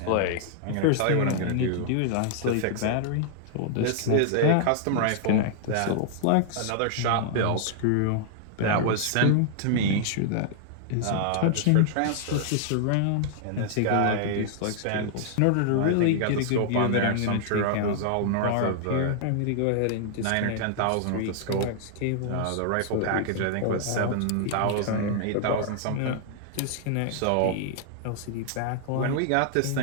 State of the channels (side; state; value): both; different; correlation -0.01